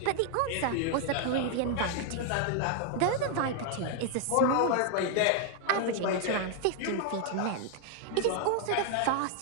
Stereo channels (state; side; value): different; both; correlation 0.00